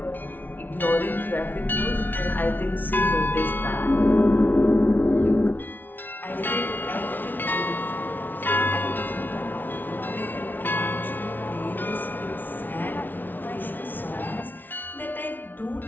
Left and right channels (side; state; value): right; late; 0.088 ms